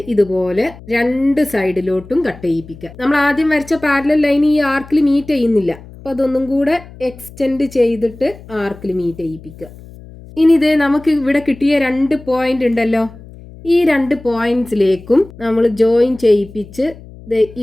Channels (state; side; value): noise; left; hum, 19 dB below the sound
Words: ഇതുപോലെ 2 സൈഡിലോട്ടും കട്ട് ചെയ്യിപ്പിക്കുക. നമ്മൾ ആദ്യം വരച്ച പാരലൽ ലൈൻ ഈ ആർക്കിൽ മീറ്റ് ചെയ്യുന്നില്ല, അപ്പോൾ അതൊന്നും കൂടെ എക്സ്റ്റെൻഡ് ചെയ്തിട്ട് ആർക്കിൽ മീറ്റ് ചെയ്യിപ്പിക്കുക. ഇനി നമുക്ക് ഇവിടെ കിട്ടിയ 2 പോയിന്റ് ഉണ്ടല്ലോ, ഈ 2 പോയിന്റ്സിലേക്കും നമ്മൾ ജോയിൻ ചെയ്യിപ്പിച്ച്